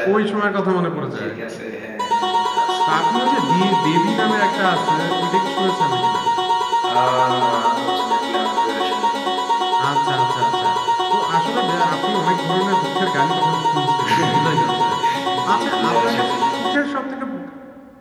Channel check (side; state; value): both; identical; correlation 1.00